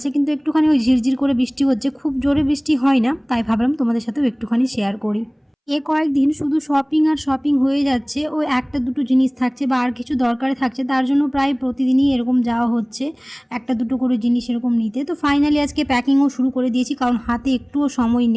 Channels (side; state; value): both; identical; correlation 1.00